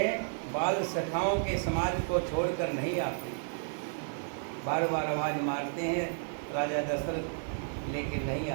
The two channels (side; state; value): left; silent; digital silence